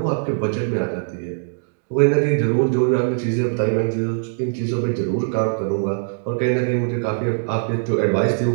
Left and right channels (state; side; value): silent; left; digital silence